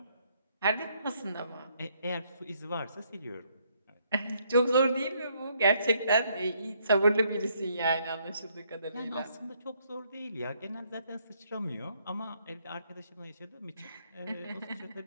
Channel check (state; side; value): inverted; both; correlation -0.70